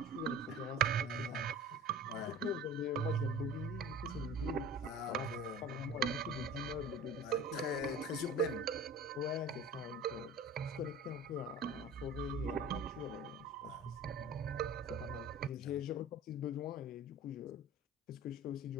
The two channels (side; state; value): both; normal; correlation 0.40